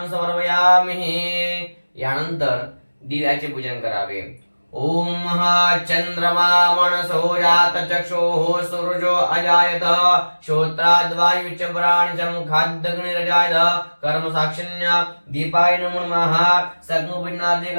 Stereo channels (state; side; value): inverted; both; correlation -1.00